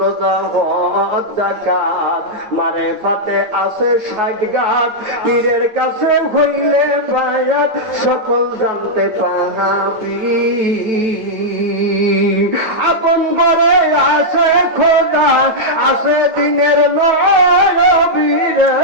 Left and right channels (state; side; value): late; left; 9.0 ms